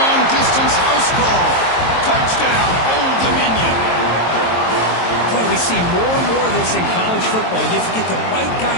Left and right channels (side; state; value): right; late; 22 ms